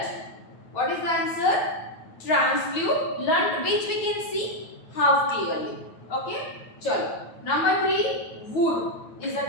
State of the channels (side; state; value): right; late; 9.3 ms